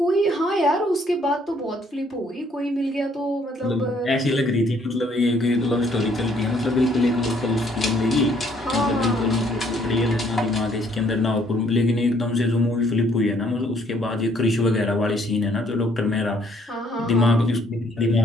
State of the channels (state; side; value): normal; both; correlation 0.65